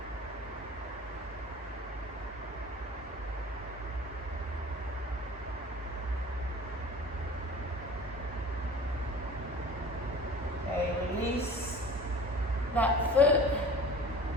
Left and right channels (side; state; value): both; normal; correlation 0.42